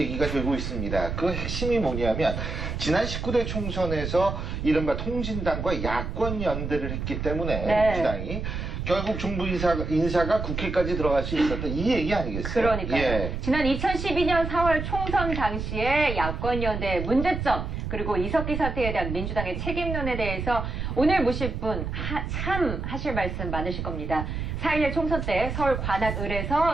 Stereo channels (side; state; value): right; noise; rumble, 4 dB below the sound